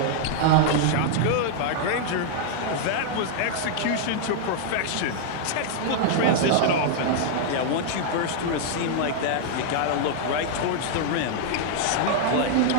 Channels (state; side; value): different; both; correlation -0.01